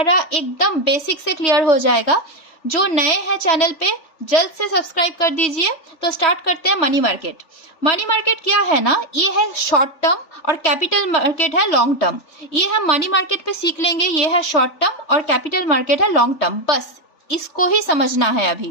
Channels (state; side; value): late; right; 3.4 ms